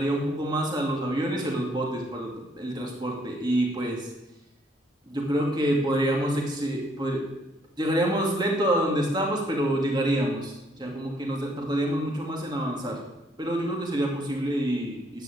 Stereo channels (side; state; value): both; normal; correlation 0.67